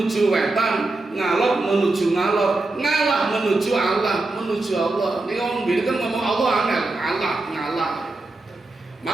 wetan, ngalor menuju ngalor, ngalah menuju Allah, menuju Allah. Ini orang bilang kan ngomong Allah angel, ngalah.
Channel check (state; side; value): quieter; left; 3.1 dB